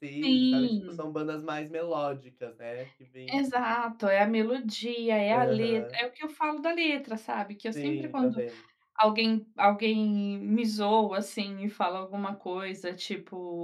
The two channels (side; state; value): both; identical; correlation 1.00